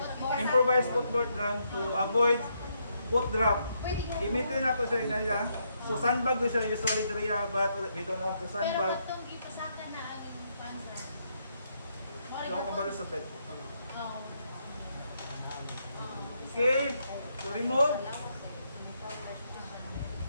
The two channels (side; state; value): both; inverted; correlation -0.77